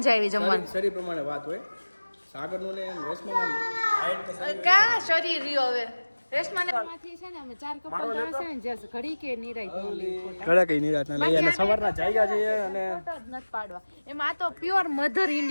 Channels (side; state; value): both; inverted; correlation -1.00